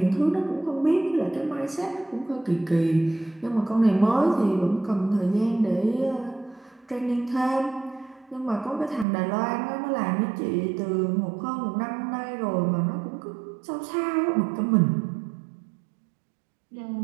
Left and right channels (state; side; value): drops out; left; at 9.1 s